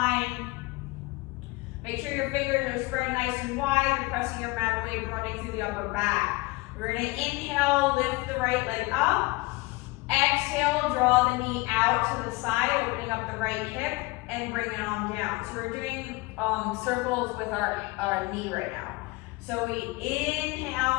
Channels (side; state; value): right; quieter; 23.3 dB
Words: Make sure your fingers are spread nice and wide. You're pressing your mat away, running through the upper back. We're going to inhale, lift the right leg up. Exhale, draw the knee out to the side, opening up the right hip, and bring it on down. So we're doing circles with our knee right now. So we